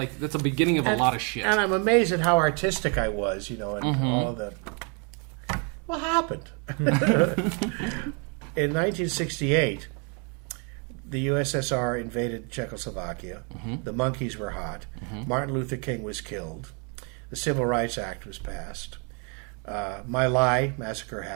that's a beginning of a lot of shit. And I'm amazed at how artistic I was, and all the... What happened? In 1968, the USSR invaded Czechoslovakia. The monkeys were hot. Martin Luther King was killed. The Civil Rights Act was passed. My Lai massacre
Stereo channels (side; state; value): left; quieter; 36.2 dB